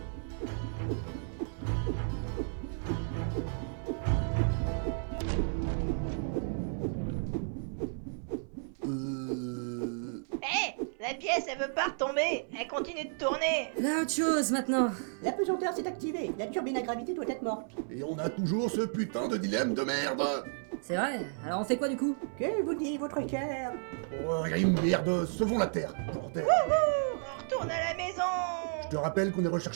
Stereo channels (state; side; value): silent; left; 56 dB below the other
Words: Hé, la pièce elle veut pas retomber, elle continue de tourner. Là autre chose maintenant. La pesanteur s'est activée, la turbine à gravité doit être morte. Et on a toujours ce putain de dilemme de merde! C'est vrai, alors on fait quoi du coup? Que vous dit votre cœur? Oh, merde, sauvons la Terre, bordel! On retourne à la maison. Je te rappelle qu'on est